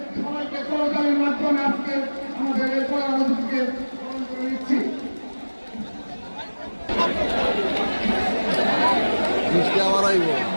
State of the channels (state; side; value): inverted; both; correlation -1.00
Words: সবাইকে করতালির মাধ্যমে আজকে আমাদের এই প্রধান অতিথিকে স্মরণ করে নিচ্ছি।